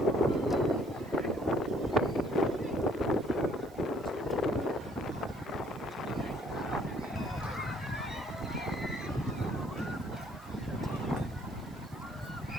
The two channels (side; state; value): right; noise; hiss, 26 dB below the sound